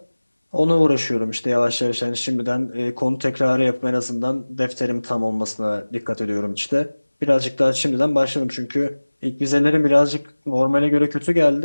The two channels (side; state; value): both; inverted; correlation -1.00